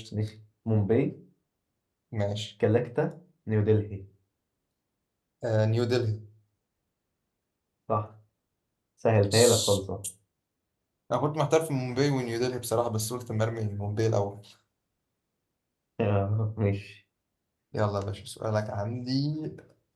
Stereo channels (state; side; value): identical; both; correlation 1.00